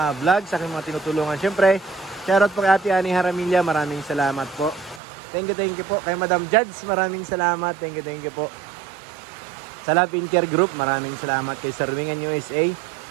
vlog, sa aking mga tinutulungan. Siyempre, shoutout po kay Ate Ani Haramilla, maraming salamat po. Thank you po. Kay Madam Judge, maraming salamat. Thank you po. Sa Love in Care Group, maraming salamat. Kay Sir Wingan USA,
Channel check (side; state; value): left; drops out; at 5.0 s